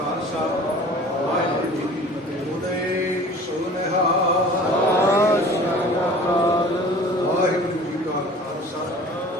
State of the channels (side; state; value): both; normal; correlation 0.44